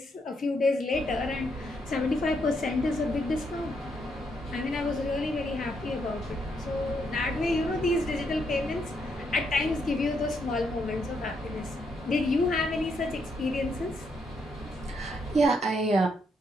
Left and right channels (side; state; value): both; normal; correlation 0.77